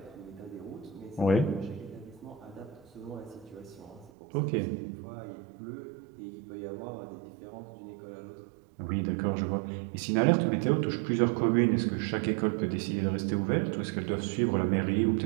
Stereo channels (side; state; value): left; drops out; at 4.1 s